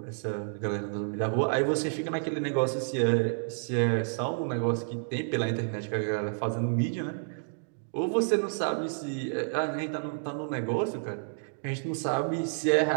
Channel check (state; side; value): silent; left; digital silence